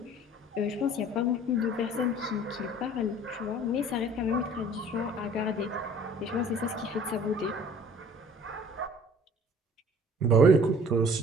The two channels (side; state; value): both; normal; correlation 0.51